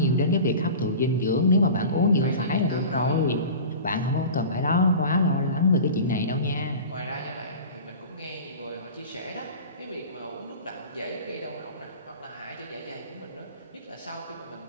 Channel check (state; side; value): inverted; both; correlation -0.36